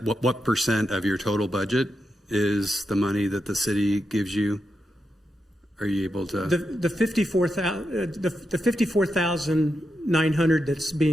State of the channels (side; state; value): both; normal; correlation 0.86